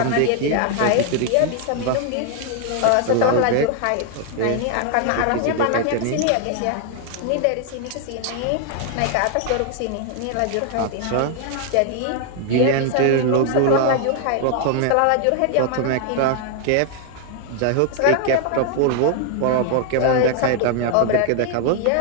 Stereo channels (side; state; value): both; different; correlation 0.00